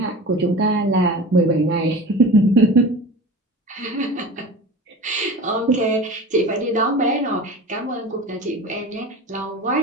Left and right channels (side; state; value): both; normal; correlation 0.34